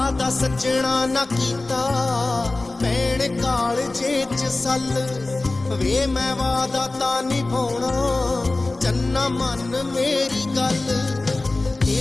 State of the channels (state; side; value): quieter; right; 3.1 dB